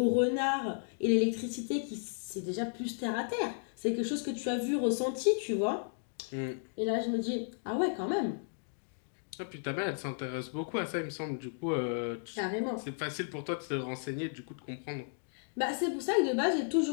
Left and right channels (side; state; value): right; silent; digital silence